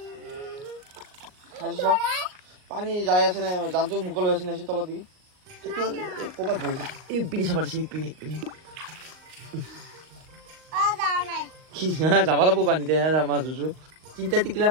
পানী যাই আছে নে জানটো মুকল হৈ আছে নে তলত দিকে ক'ৰবাত বহিছে এই পিনি চাব দিছে পিনি যাব লাগিব পানীতে মাছ ধুছো 3টা টিকিলা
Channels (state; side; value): late; left; 38 ms